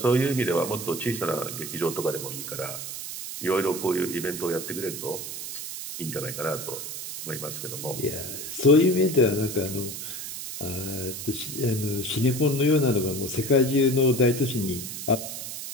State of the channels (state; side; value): noise; right; hiss, 7 dB below the sound